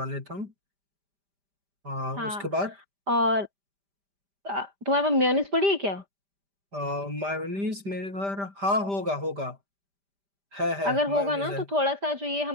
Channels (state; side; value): late; left; 5.0 ms